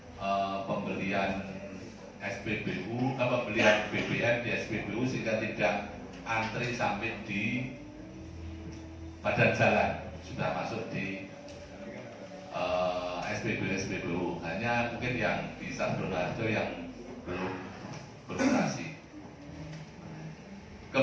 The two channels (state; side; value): identical; both; correlation 1.00